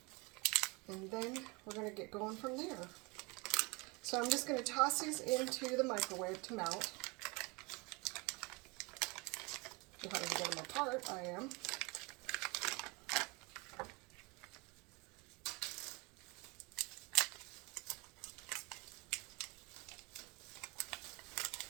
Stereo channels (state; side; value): quieter; left; 27.5 dB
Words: And then we're going to get going from there. So I'm just going to toss these into the microwave to melt. If I can get them apart, I am.